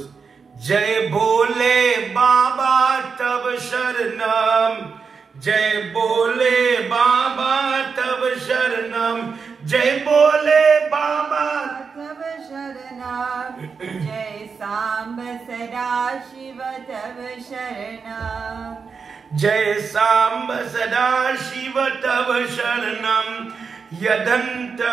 Jai Bole Baba Tab Sharanam. Jai Bole Baba Tab Sharanam. Jai Bole Baba Tab Sharanam. Jai Samba Sada Shiva Tab Sharanam. Jai Samba Sada Shiva Tab Sharanam.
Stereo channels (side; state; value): left; quieter; 5.5 dB